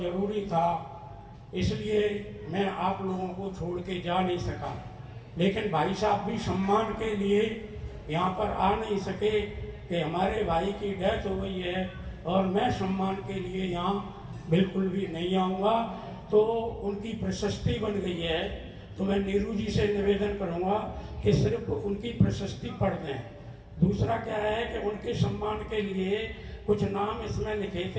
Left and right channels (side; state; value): both; identical; correlation 1.00